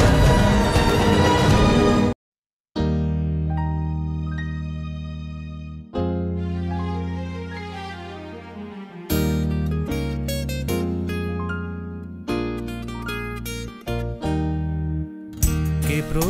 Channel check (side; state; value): both; identical; correlation 1.00